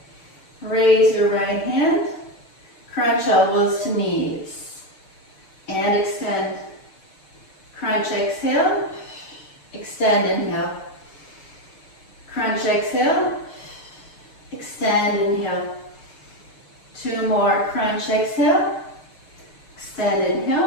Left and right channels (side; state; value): right; late; 6.6 ms